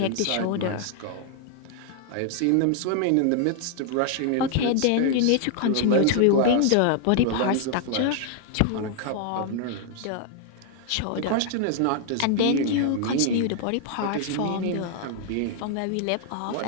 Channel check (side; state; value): both; different; correlation 0.00